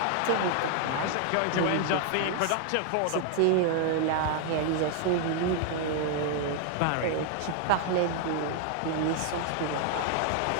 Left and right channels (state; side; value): different; both; correlation 0.00